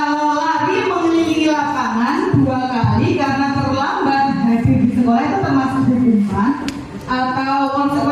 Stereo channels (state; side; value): identical; both; correlation 1.00